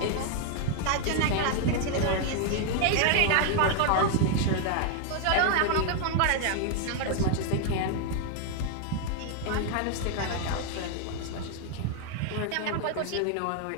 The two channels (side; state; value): both; different; correlation 0.00